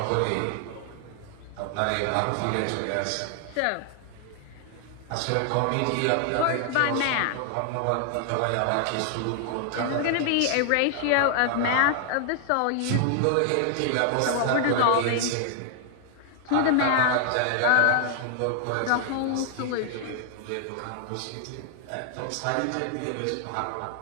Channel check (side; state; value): both; different; correlation 0.00